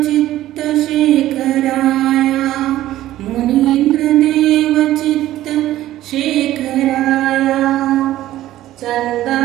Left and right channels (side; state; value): left; quieter; 14.3 dB